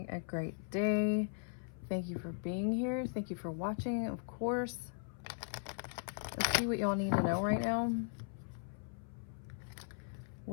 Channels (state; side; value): silent; right; 52 dB below the other